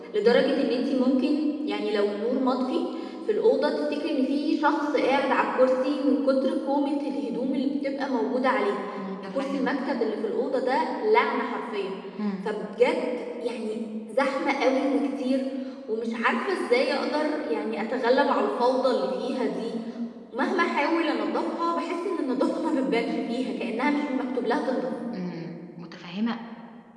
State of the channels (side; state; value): both; identical; correlation 1.00